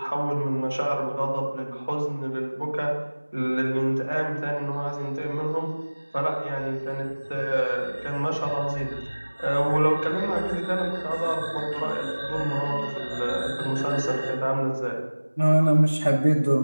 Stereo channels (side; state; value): both; inverted; correlation -1.00